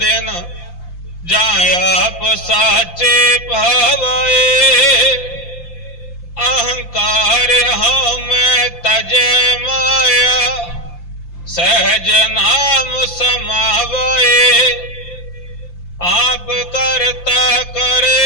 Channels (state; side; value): late; right; 5.8 ms